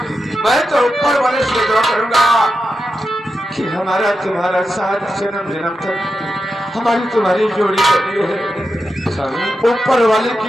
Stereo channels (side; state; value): both; normal; correlation 0.89